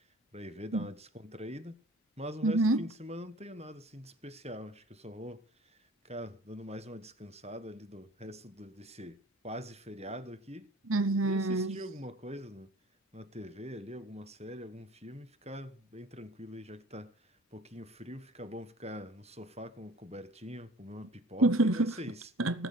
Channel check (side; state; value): both; normal; correlation 0.46